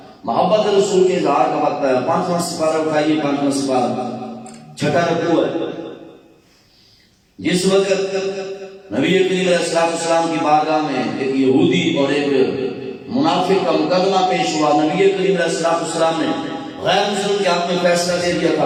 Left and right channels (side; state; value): both; identical; correlation 1.00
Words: محبت رسول کے اظہار کا وقت ہے۔ 5واں سپارہ اٹھائیے، 5واں سپارہ 6واں رکوع ہے۔ جس وقت نبی کریم علیہ السلام کی بارگاہ میں ایک یہودی اور ایک منافق کا مقدمہ پیش ہوا، نبی کریم علیہ السلام نے غیر مسلم کے حق میں فیصلہ دے دیا تھا،